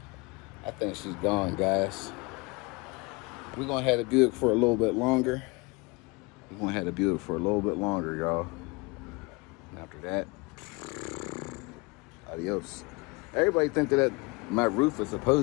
I think she's gone, guys. We're gonna have the Buick for a little bit longer. We're gonna have the Buick for a little bit longer, y'all. And after that, adios. Everybody think that my roof is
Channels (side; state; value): right; quieter; 27.1 dB